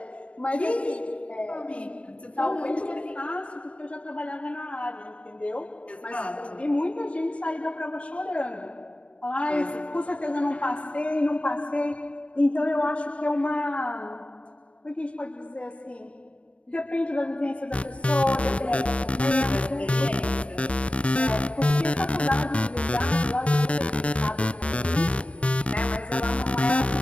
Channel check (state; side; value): late; right; 0.062 ms